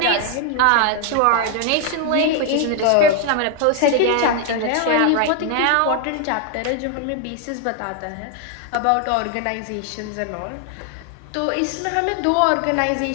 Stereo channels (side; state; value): both; different; correlation 0.01